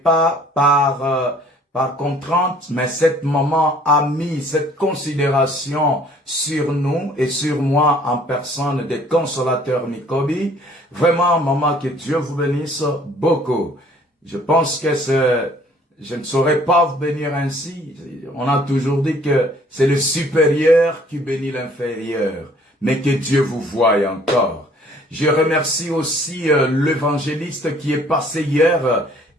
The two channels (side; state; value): both; normal; correlation 0.57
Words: par contrainte, mais cette maman a mis cette considération sur nous et sur moi en personne des consolateurs Nikobi. Vraiment, maman, que Dieu vous bénisse beaucoup. Je pense que je ne saurais pas vous bénir ainsi. On a toujours dit que c'est le supérieur qui bénit l'inférieur, mais que Dieu vous voie encore. Je remercie aussi l'évangéliste qui est passé hier.